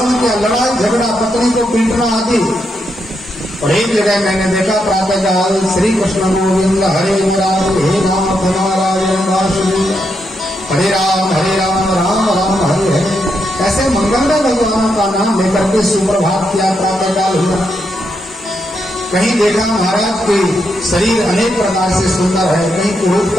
किया, लड़ाई झगड़ा, पत्नी को पीटना आदि। और एक जगह मैंने देखा प्रातः काल श्री कृष्ण गोविंद हरे राम हे राम नारायण वासुदेव हरे राम राम राम हरे हरे, ऐसे मंगलमय भगवानों का नाम लेकर के सुप्रभात किया, प्रातः काल हुआ। कहीं देखा महाराज के शरीर अनेक प्रकार से सुंदर है, कहीं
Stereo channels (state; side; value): normal; both; correlation 0.81